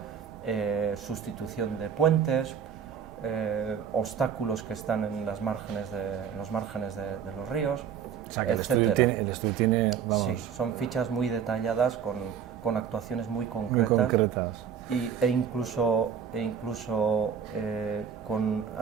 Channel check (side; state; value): left; quieter; 7.7 dB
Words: sustitución de puentes, obstáculos que están en los márgenes de los ríos, O sea, que el estudio tiene, vamos... Sí, son fichas muy detalladas con actuaciones muy concretas. Muy concretas. E incluso con